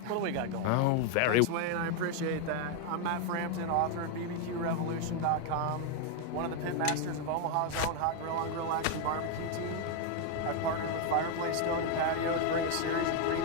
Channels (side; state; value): both; different; correlation 0.01